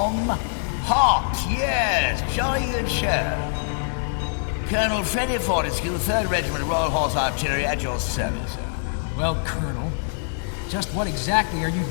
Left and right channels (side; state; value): right; silent; digital silence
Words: Hot, yes. Jolly good show. Colonel Freddie Fortescue, 3rd Regiment Royal Horse Artillery, at your service, sir. Well, Colonel, just what exactly are you